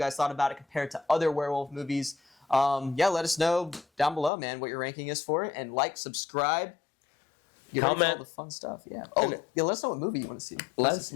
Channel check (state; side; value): drops out; right; at 4.3 s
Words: thought about it compared to other werewolf movies. Yeah, let us know down below, man, what your ranking is for it, and like, subscribe. Get ready for all the fun stuff. Yeah. Oh, yeah. Let us know what movie you want to see. Let us